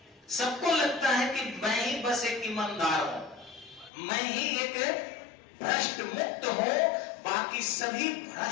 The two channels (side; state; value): right; drops out; at 3.9 s